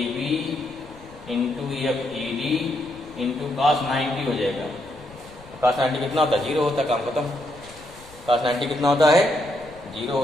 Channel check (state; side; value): noise; left; rumble, 22 dB below the sound